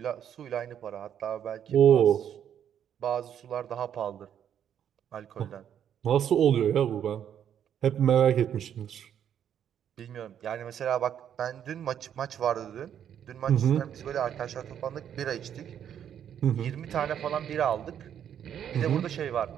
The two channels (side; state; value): left; quieter; 9.3 dB